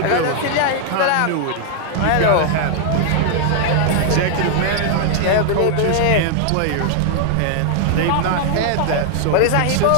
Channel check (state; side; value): different; both; correlation 0.00